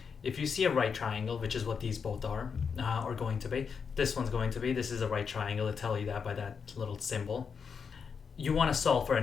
If you see a right triangle, which is what these both are, or going to be, this one's going to be, this is a right triangle, it'll tell you that by that little symbol. You want to solve for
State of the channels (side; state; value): right; quieter; 6.1 dB